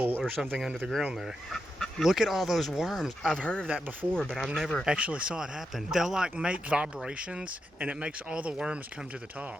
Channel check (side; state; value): both; normal; correlation 0.86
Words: or something under the ground there. Look at all those worms. I've heard of that before, but I've never actually saw it happen. They'll like make vibrations and it makes all the worms come to the